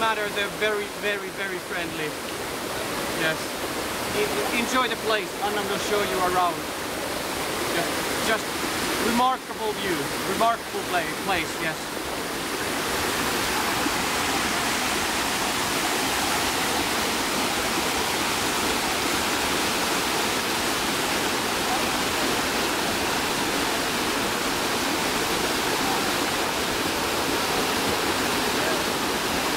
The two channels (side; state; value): both; identical; correlation 1.00